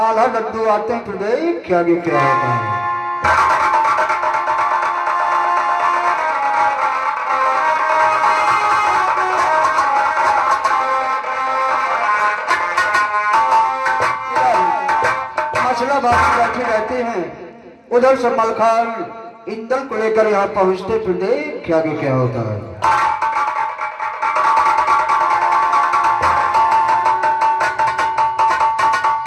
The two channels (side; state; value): both; identical; correlation 1.00